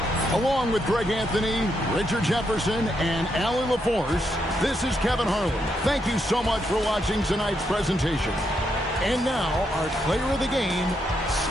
Along with Greg Anthony, Richard Jefferson, and Allie LaForce, this is Kevin Harlan. Thank you so much for watching tonight's presentation. And now, our player of the game,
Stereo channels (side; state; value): both; normal; correlation 0.79